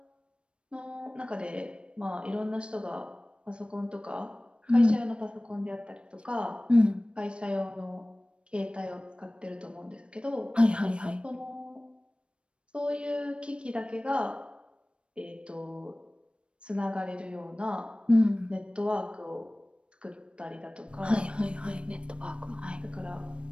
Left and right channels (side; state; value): left; late; 0.057 ms